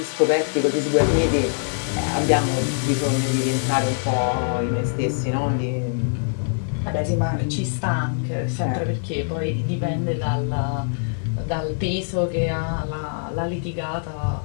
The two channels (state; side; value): silent; right; 63 dB below the other